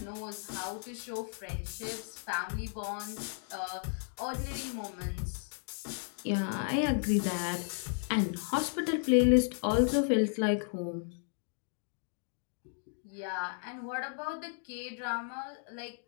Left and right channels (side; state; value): right; silent; 55 dB below the other